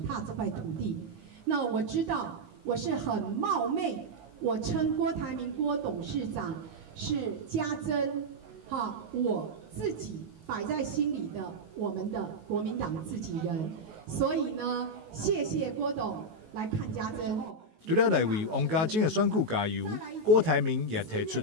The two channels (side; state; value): left; late; 19 ms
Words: 踏這塊土地。那我知道我是很冒昧，我稱郭台銘郭董事長是家珍，我自己擺在心裡的我們的國民黨自己人，所以呢，謝謝郭董來看家珍。除了來為王家正的選舉加油，郭台銘也提出